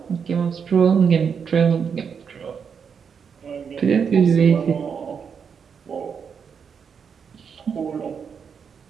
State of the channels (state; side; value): quieter; left; 6.6 dB